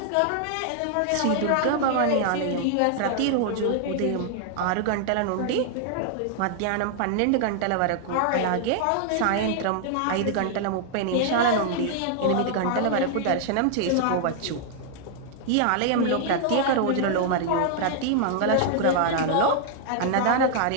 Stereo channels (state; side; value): different; both; correlation 0.00